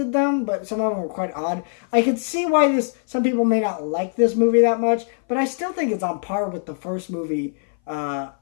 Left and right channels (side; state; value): right; silent; 59 dB below the other